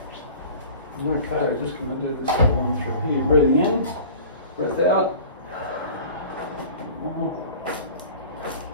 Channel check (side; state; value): both; inverted; correlation -0.42